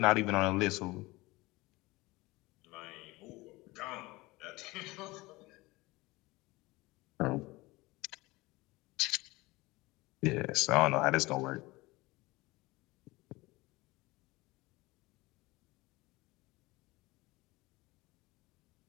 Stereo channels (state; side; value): quieter; right; 21.6 dB